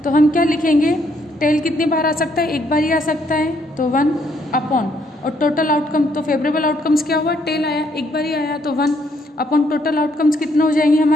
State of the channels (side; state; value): both; normal; correlation 0.70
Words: तो हम क्या लिखेंगे? टेल कितनी बार आ सकता है? एक बार ही आ सकता है, तो 1 अपॉन और टोटल आउटकम, तो फेवरेबल आउटकम्स क्या हुआ, टेल आया, एक बार ही आया, तो 1 अपॉन टोटल आउटकम्स कितने हो जाएंगे